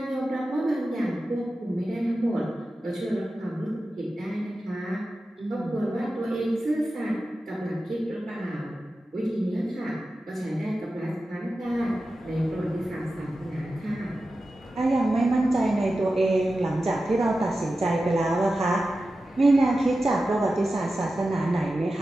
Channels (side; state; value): both; normal; correlation 0.93